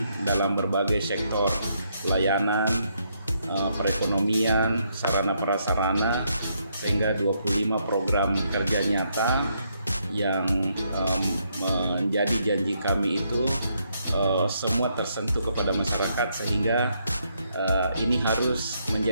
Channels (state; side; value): inverted; both; correlation -0.75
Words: dalam berbagai sektor layanan, perekonomian, sarana prasarana, sehingga 25 program kerja nyata yang menjadi janji kami itu semua tersentuh kepada masyarakat, sehingga ini harus